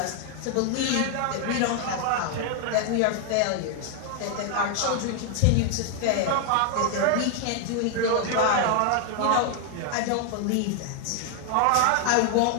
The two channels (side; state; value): both; different; correlation 0.00